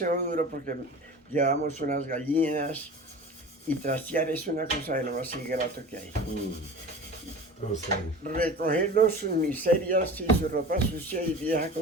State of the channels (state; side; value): normal; both; correlation 0.36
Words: duro porque llevamos unas gallinas y trastear es una cosa de lo más ingrato que hay. O sea, Recogerlos sus miserias y su ropa sucia y vieja